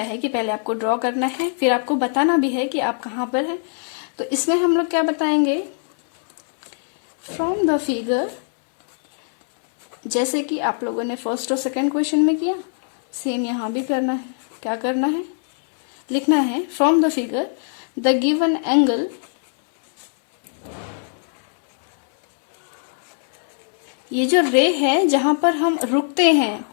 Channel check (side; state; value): right; silent; 65 dB below the other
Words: है कि पहले आपको ड्रॉ करना है, फिर आपको बताना भी है कि आप कहाँ पर हैं। तो इसमें हम लोग क्या बताएंगे, फ्रॉम द फिगर, जैसे कि आप लोगों ने फर्स्ट और सेकंड क्वेश्चन में किया, सेम यहाँ भी करना है। क्या करना है, लिखना है from the figure the given angle ये जो रे है जहां पर हम रुकते हैं